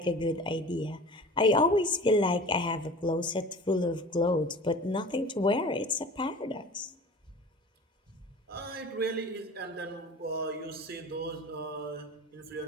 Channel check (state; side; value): normal; both; correlation 0.39